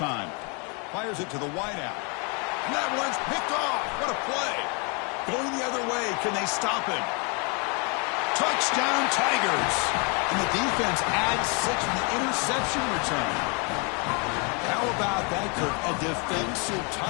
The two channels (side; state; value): right; quieter; 33.8 dB